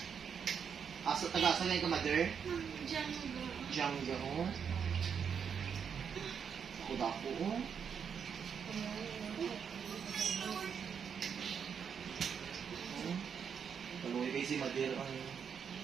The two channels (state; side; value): quieter; left; 7.1 dB